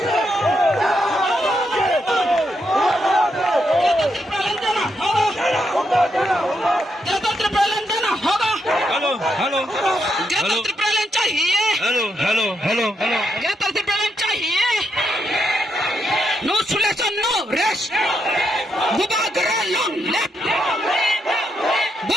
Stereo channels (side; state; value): both; normal; correlation 0.80